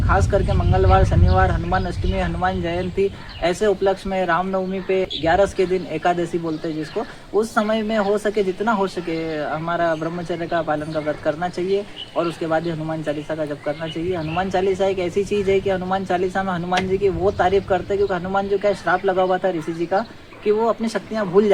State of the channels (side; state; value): both; identical; correlation 1.00